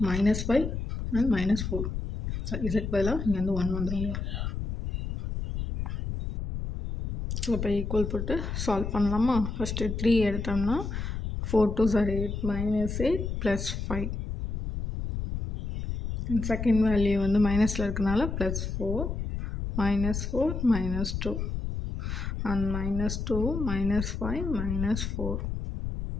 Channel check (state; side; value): noise; left; rumble, 4 dB below the sound